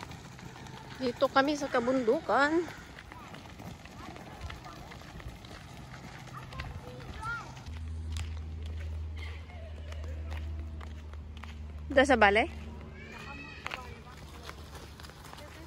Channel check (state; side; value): identical; both; correlation 1.00